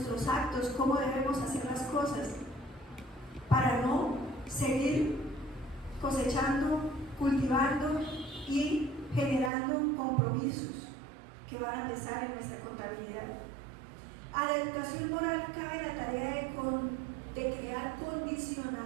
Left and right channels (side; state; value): left; drops out; at 9.5 s